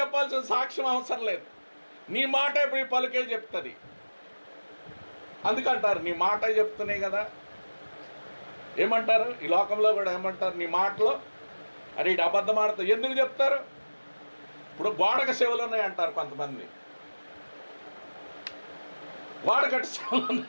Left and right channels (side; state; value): both; inverted; correlation -1.00